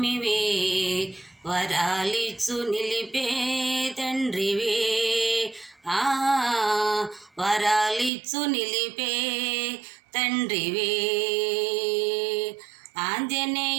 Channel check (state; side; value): drops out; left; at 8.1 s